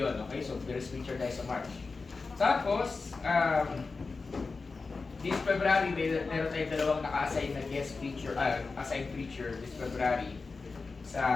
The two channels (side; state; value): right; quieter; 4.2 dB